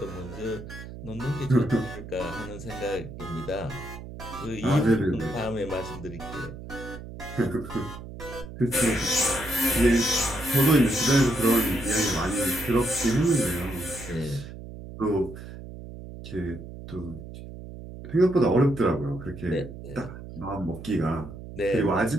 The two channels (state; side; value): noise; right; hum, 12 dB below the sound